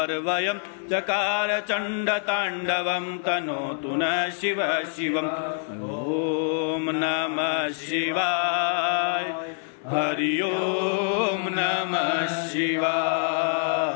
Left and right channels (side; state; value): right; silent; digital silence